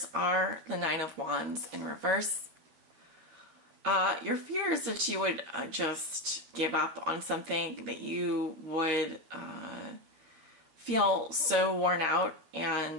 are the Nine of Wands in reverse. Your fear is that you would just give up on something, that you would feel so worn out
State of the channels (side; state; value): left; late; 12 ms